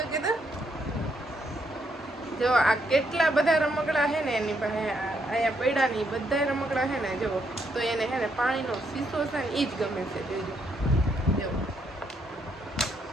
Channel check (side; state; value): both; normal; correlation 0.75